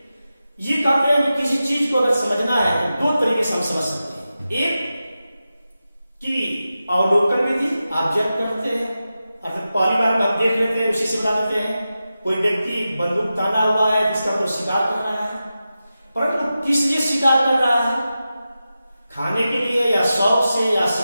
ये कहते हैं कि किसी चीज को अगर समझना है तो दो तरीके से हम समझ सकते हैं, एक कि अवलोकन विधि, ऑब्जर्व करते हैं, अर्थात पहली बार हम देख लेते हैं, उसी से बता देते हैं। कोई व्यक्ति बंदूक ताना हुआ है, जिसका कोई शिकार कर रहा है, परंतु किस लिए शिकार कर रहा है, खाने के लिए या शौक से या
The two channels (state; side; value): inverted; both; correlation -0.92